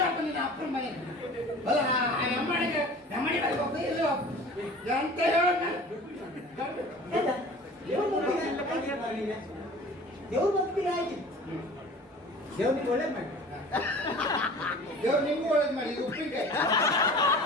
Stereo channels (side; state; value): both; normal; correlation 0.42